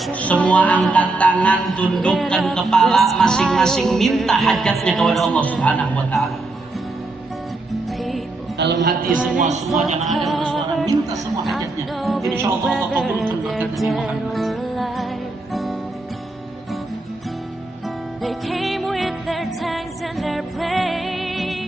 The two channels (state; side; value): quieter; left; 3.0 dB